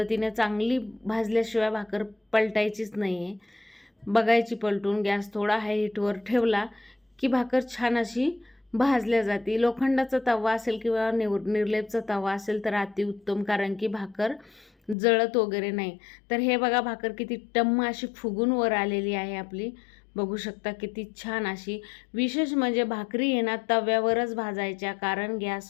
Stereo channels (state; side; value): drops out; right; at 15.0 s